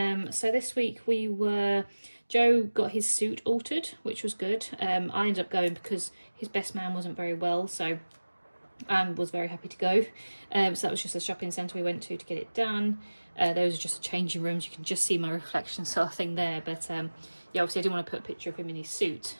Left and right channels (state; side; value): inverted; both; correlation -1.00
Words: this week Joe got his suit altered, which was good. I ended up going because his best man wasn't very well, so I was very happy to go. So that was just a shopping centre we went to get it done. Those are just changing rooms. You can just see my reflection sort of thing there. But yeah, obviously I didn't want to put a picture of him in his suit